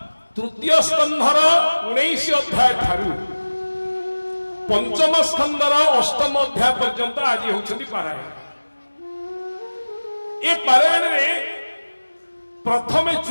तृतीय स्कंधर 19 अध्याय ठारू पंचम स्कंधर 8म अध्याय पर्यंत आज होउछंती पारायण। ए पारायण में प्रथम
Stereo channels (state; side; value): inverted; both; correlation -1.00